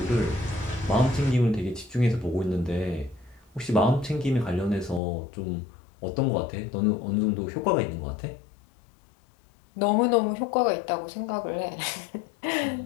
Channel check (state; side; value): drops out; right; at 5.0 s